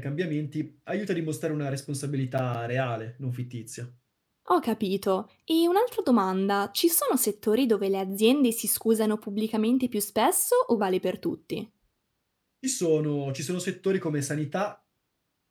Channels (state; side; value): identical; both; correlation 1.00